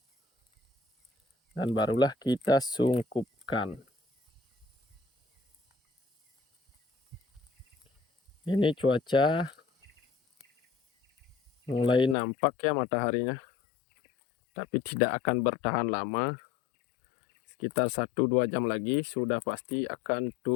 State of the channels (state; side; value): drops out; right; at 12.2 s